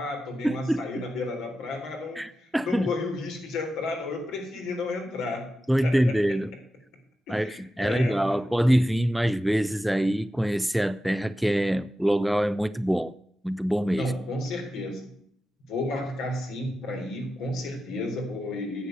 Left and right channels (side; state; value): both; normal; correlation 0.91